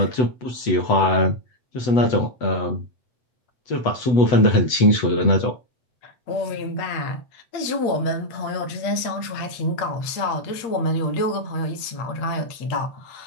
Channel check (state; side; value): late; right; 8.1 ms